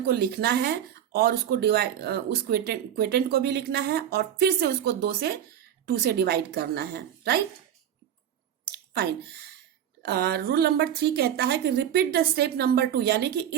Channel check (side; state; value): left; quieter; 10.0 dB